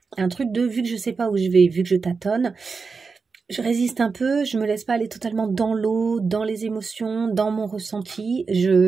Un truc de, vu que je ne sais pas où je vais, vu que je tâtonne, je résiste un peu, je ne me laisse pas aller totalement dans l'eau, dans les émotions, dans mon ressenti.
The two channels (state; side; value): quieter; left; 4.8 dB